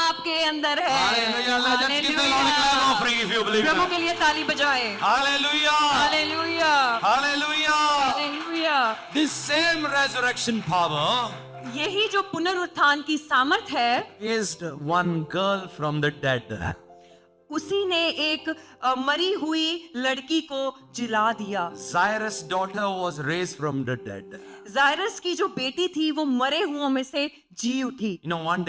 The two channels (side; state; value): both; identical; correlation 1.00